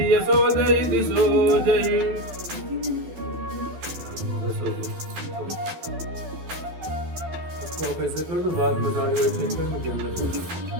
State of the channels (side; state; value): left; late; 12 ms